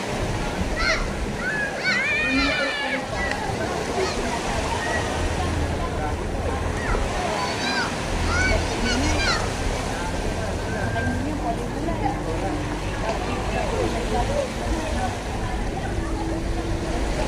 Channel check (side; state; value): both; identical; correlation 1.00